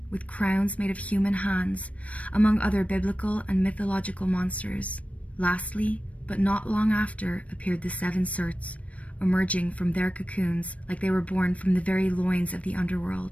with crowns made of human hands, among other biblical and mythological monsters. Lastly, but not long after, appeared the 7 Surts, emerging from their cocoons like they were born from the very loins of the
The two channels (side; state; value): right; late; 0.065 ms